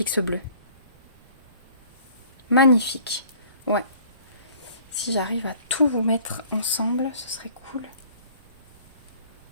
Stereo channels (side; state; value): both; inverted; correlation -0.53